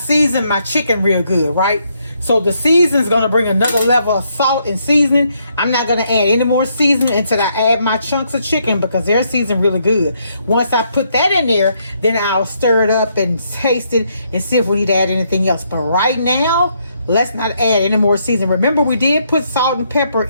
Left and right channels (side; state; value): both; inverted; correlation -0.74